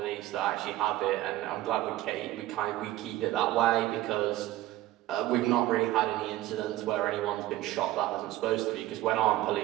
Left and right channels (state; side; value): quieter; left; 15.5 dB